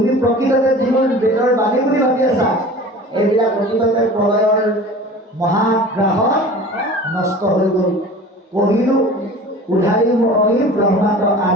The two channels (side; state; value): both; normal; correlation 0.40